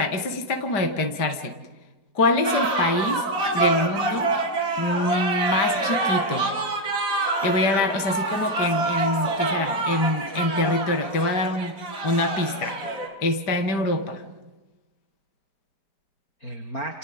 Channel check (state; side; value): late; right; 5.0 ms